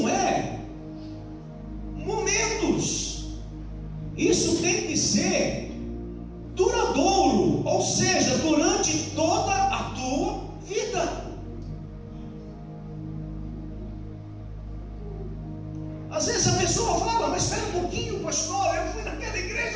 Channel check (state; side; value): identical; both; correlation 1.00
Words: é momentos, isso tem que ser duradouro, ou seja, durante toda a tua vida. Às vezes a pessoa fala: mas espera um pouquinho, pastor, eu fui naquela